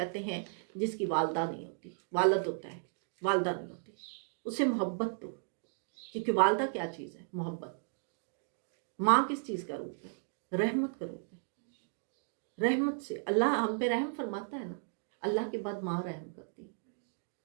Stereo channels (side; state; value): left; silent; digital silence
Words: ہیں جس کی والدہ نہیں ہوتی. والد ہوتا ہے، والدہ نہیں ہوتی. اسے محبت دو، کیونکہ والدہ کیا چیز ہے؟ محبت. ماں کس چیز کا روپ ہے؟ رحمت کا روپ ہے. رحمت سے اللہ ہم پہ رحم فرماتا ہے نا، اللہ کے بعد ماں رحم کرتی ہے.